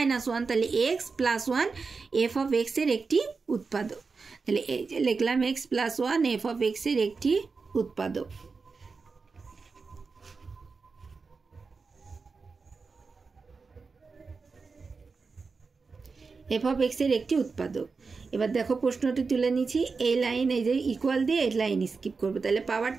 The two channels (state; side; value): quieter; left; 4.6 dB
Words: তাহলে x plus 1 F of x এর একটি উৎপাদক। তাহলে এই যে লিখলাম x plus 1 F of x এর একটি উৎপাদক। এফ অফ এক্স এর একটি উৎপাদক। এবার দেখো প্রশ্নটি তুলে নিচ্ছি, এই লাইন এই যে ইকুয়াল দিয়ে এই লাইন স্কিপ করবো, তাহলে পাওয়ার